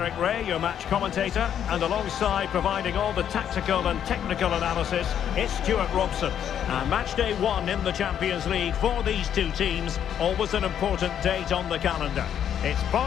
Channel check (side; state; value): right; quieter; 9.4 dB